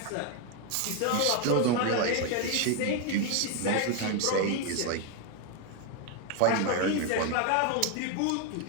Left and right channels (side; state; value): both; different; correlation 0.01